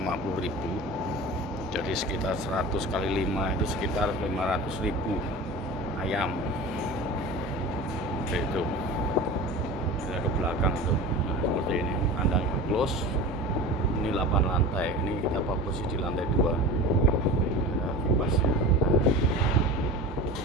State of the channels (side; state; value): both; normal; correlation 0.32